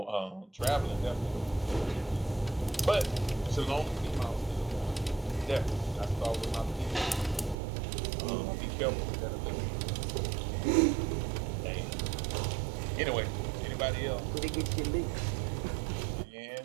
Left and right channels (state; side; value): drops out; left; at 7.6 s